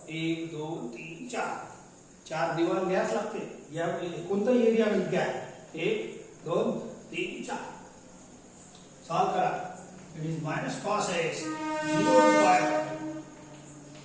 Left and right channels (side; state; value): both; identical; correlation 1.00